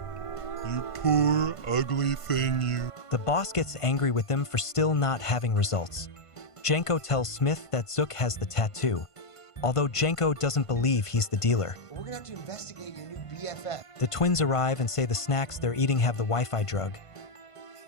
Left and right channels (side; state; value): right; late; 1.5 ms